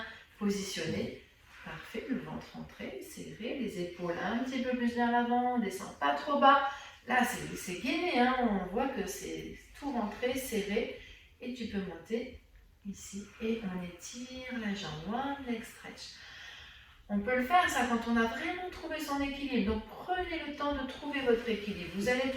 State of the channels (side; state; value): both; identical; correlation 1.00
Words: positionné. Parfait, le ventre rentré, serré, les épaules un petit peu plus vers l'avant, on ne descend pas trop bas. Là, c'est gainé, hein, on voit que c'est tout rentré, serré. Et tu peux monter ici et on étire la jambe, one leg stretch. On peut le faire ça quand on a vraiment trouvé son équilibre. Donc prenez le temps de trouver votre équilibre. Vous allez